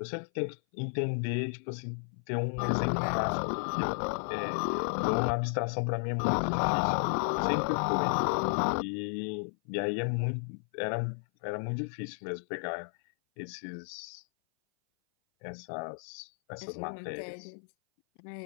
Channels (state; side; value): silent; right; 56 dB below the other